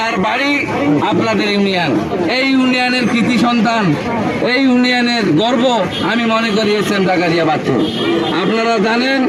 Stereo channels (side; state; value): both; identical; correlation 1.00